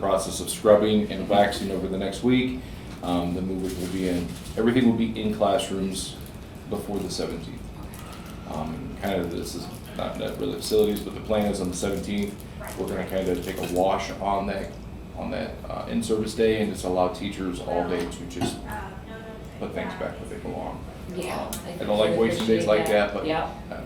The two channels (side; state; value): both; identical; correlation 1.00